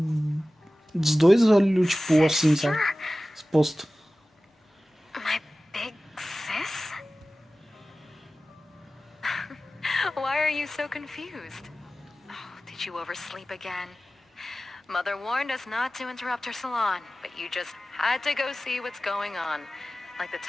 dois olhos, tipo, assim, sabe? Exposto. My big sis? Why are you so confused? Oh, did you oversleep again? Mother warned us not to interrupt her salon, but you just had to go see what's going on. Like the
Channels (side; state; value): both; normal; correlation 0.96